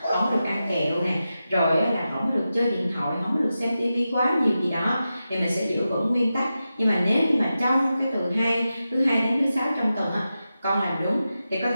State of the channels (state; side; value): inverted; both; correlation -0.91